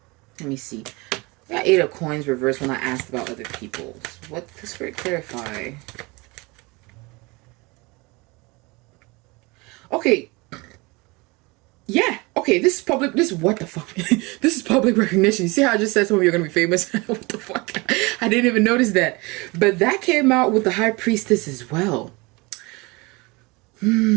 me see. I got 8 of coins reversed when I asked about other people. What does Spirit clarify? Okay. Yeah. Okay, this is public. This, what the fuck? This is public recognition. You see how I just said some of you are going to be famous? What the fuck? I didn't even notice that. But that came out with the High Priestess as well. 8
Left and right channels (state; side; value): quieter; left; 25.5 dB